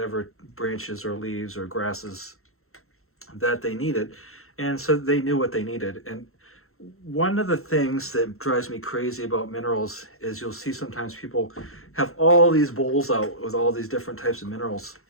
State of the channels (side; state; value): right; late; 0.62 ms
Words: branches or leaves or grasses that they needed, and so they knew what they needed. And one of the things that drives me crazy about minerals is you'll see sometimes people have all these bowls out with all these different types of minerals,